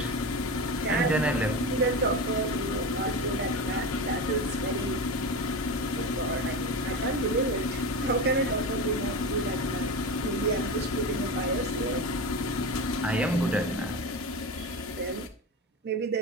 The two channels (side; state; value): both; normal; correlation 0.23